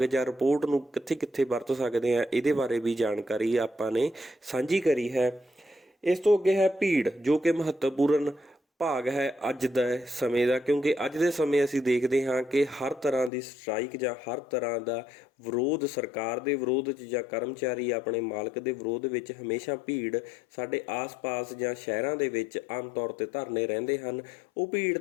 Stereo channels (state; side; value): drops out; right; at 13.3 s